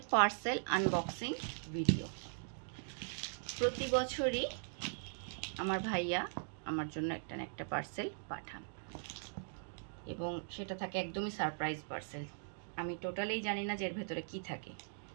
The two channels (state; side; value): silent; left; digital silence